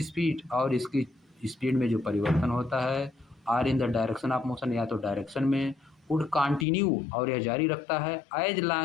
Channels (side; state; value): right; drops out; at 6.7 s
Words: speed, और इसकी स्पीड में जो परिवर्तन होता है, or in the direction of motion, या तो डायरेक्शन में, वुड कंटिन्यू, और यह जारी रखता है, एज